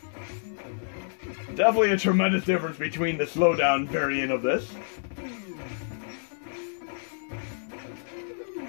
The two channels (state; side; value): silent; right; digital silence